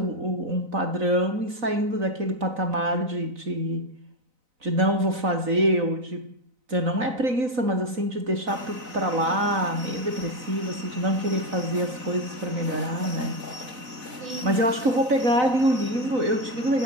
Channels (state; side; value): late; left; 4.0 ms